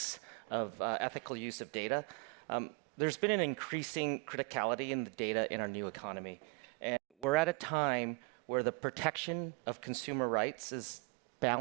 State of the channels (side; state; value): left; quieter; 31.5 dB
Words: of ethical use of data. There's been an increasing criticality in the data in our new economy. And we're at a time where the protection of consumer rights is